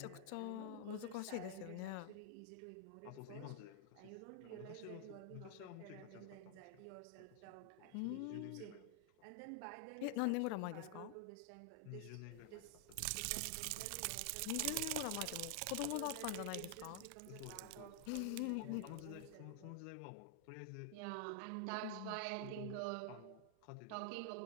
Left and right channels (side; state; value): both; different; correlation 0.00